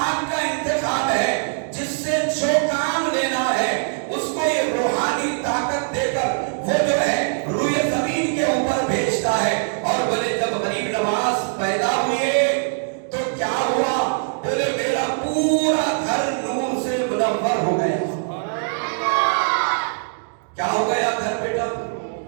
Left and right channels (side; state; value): left; silent; digital silence